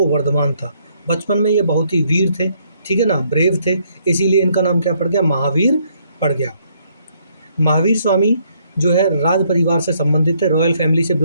वर्धमान था। बचपन में ये बहुत ही वीर थे, ठीक है ना, ब्रेव थे, इसीलिए इनका नाम क्या पड़ गया, महावीर पड़ गया। महावीर स्वामी जो है राज परिवार से संबंधित थे, रॉयल फैमिली से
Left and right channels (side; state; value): both; inverted; correlation -0.69